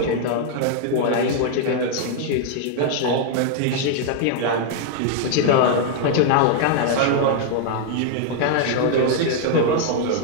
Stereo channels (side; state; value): both; different; correlation 0.00